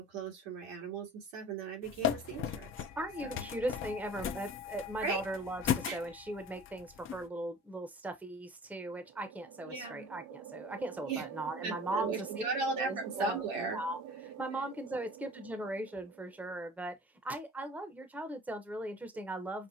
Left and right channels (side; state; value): both; normal; correlation 0.42